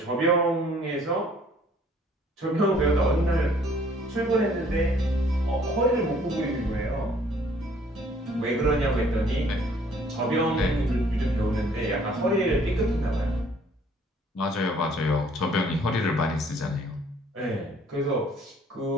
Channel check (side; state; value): both; normal; correlation 0.59